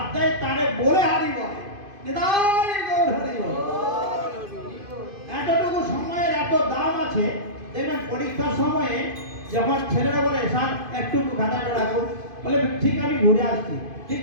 দেয় তারে বলে হারিব, এতটুকু সময়ের এত দাম আছে। দেখবেন পরীক্ষার সময়ে যখন ছেলেরা বলে স্যার একটু খাতাটা রাখুন, বলে ঠিক আমি ঘুরে আসছি, ঠিক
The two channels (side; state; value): left; late; 2.5 ms